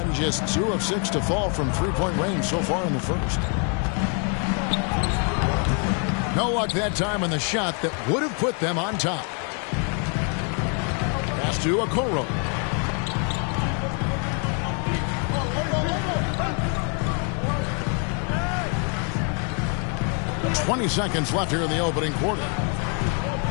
just 2 of 6 to fall from three-point range so far in the first. No luck that time on the shot that would have put them on top. Pass to Okoro. "20 seconds left here in the opening quarter.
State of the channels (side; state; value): right; quieter; 39.7 dB